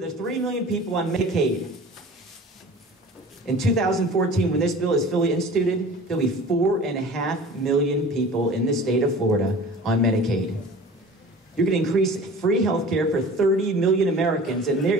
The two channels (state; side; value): normal; both; correlation 0.41